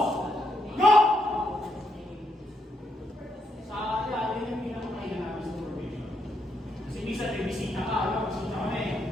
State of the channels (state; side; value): normal; both; correlation 0.78